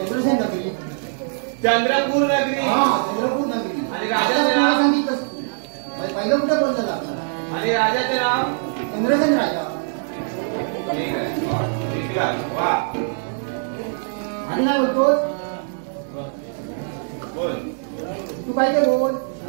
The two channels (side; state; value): left; silent; digital silence